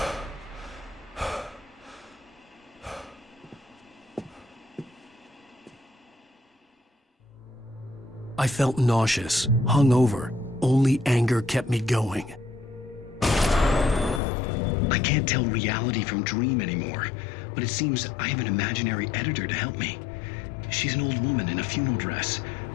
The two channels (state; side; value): drops out; right; at 14.2 s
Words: I felt nauseous, hungover. Only anger kept me going. I can't tell reality from dream anymore, but it seems I have an imaginary editor to help me. She's an old woman in a funeral dress.